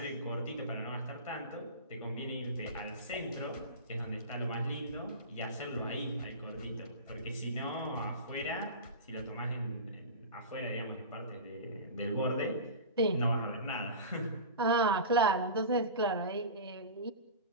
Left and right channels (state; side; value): inverted; both; correlation -0.30